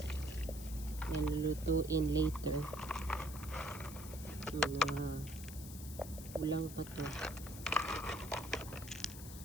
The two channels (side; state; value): left; noise; hiss, 13 dB below the sound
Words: Nalulutuin later. Kulang pa to.